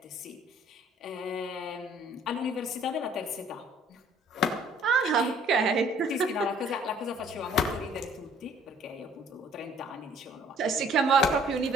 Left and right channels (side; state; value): both; normal; correlation 0.57